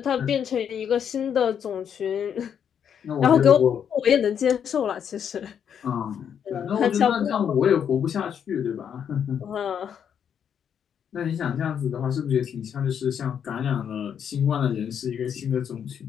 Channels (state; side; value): quieter; right; 8.2 dB